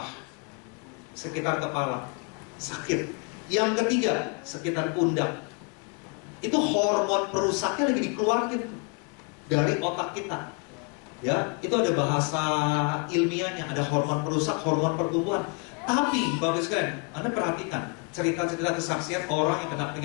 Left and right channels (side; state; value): right; quieter; 33.1 dB